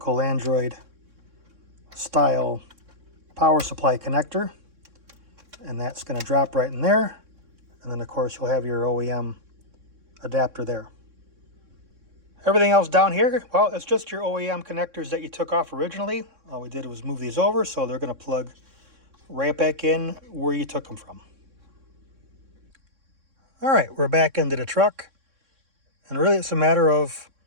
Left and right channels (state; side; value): late; left; 3.6 ms